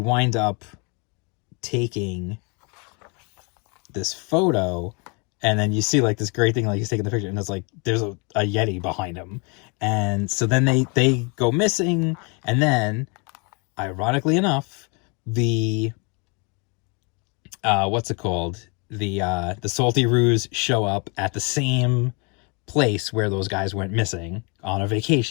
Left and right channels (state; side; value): quieter; right; 33.1 dB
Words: up taking this photo, and then you see, like, this great thing, like, he's taking the picture, and it's like there's a Yeti behind him, and so then they go missing, and then, ironically enough, the what's it called, the Salty Roos show up at the same place where those guys went missing on a